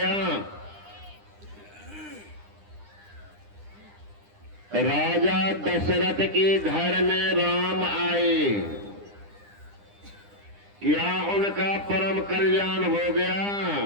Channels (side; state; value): left; late; 9.9 ms